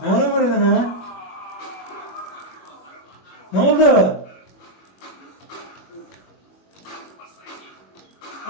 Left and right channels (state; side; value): late; right; 21 ms